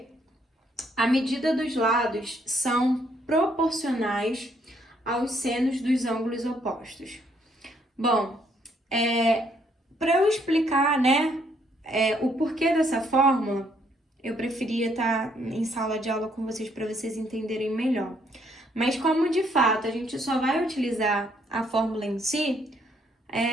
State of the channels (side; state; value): both; normal; correlation 0.70